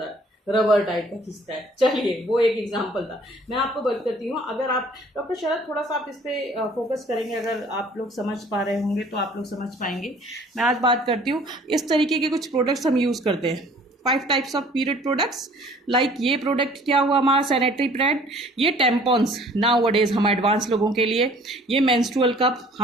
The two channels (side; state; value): both; normal; correlation 0.54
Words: है, रबर टाइप का खिंचता है। चलिए, वो एक एग्जांपल था। मैं आपको बात करती हूँ, अगर आप डॉक्टर शरद थोड़ा सा आप इस पे फोकस करेंगे, अगर आप लोग समझ पा रहे होंगे तो आप लोग समझ पाएंगे। मैं आज बात करती हूँ, इस तरीके के कुछ प्रोडक्ट्स हम यूज़ करते हैं, 5 types of period products. Like ये प्रोडक्ट क्या हुआ हमारा, सैनिटरी पैड, ये टेम्पॉन्स नाउ डेज हम एडवांस लोगों के लिए, ये मेंस्ट्रुअल कप